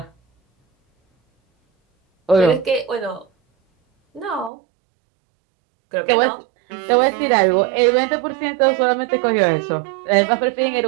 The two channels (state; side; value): drops out; left; at 4.5 s